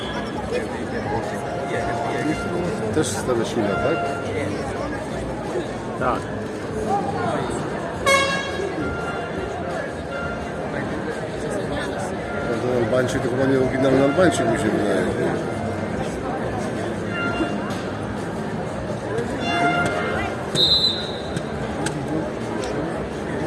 Też Staniszyna, tak? Tak. Ten Albańczyk to chyba nie oryginalny Albańczyk, mi się wydaje.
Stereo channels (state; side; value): identical; both; correlation 1.00